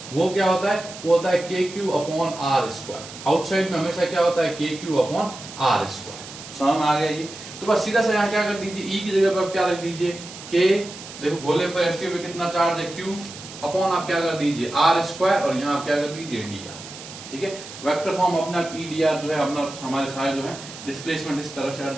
वो क्या होता है, वो होता है KQ/r²। आउटसाइड में हमेशा क्या होता है, KQ/r²। समझ में आ गया ये? तो बस सीधा सा यहाँ क्या कर दीजिए, E की जगह पर आप क्या रख दीजिए, K, देखो गोले पर इसके भी कितना चार्ज है, Q, अपॉन आप क्या कर दीजिए, r², और यहाँ आप क्या कर दीजिए, dr। ठीक है, वेक्टर फॉर्म अपना E dr जो है अपना हमारे सारे जो है डिस्प्लेसमेंट इस तरह से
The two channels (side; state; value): right; noise; hiss, 14 dB below the sound